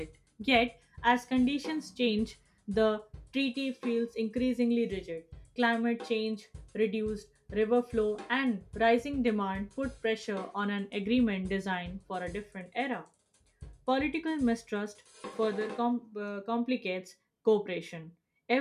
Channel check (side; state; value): both; identical; correlation 1.00